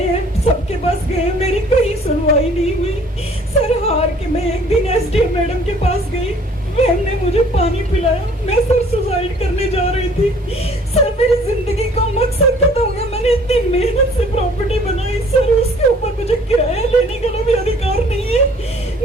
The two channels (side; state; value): both; normal; correlation 0.55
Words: हैं, सबके पास गए हैं, मेरी कहीं सुनवाई नहीं हुई। सर, हार के मैं एक दिन एसडीएम मैडम के पास गई, मैम ने मुझे पानी पिलाया। मैं सर सुसाइड करने जा रही थी। सर, मेरी जिंदगी का मकसद खत्म हो गया। मैंने इतनी मेहनत से प्रॉपर्टी बनाई सर, उसके ऊपर मुझे किराया लेने का भी अधिकार नहीं है।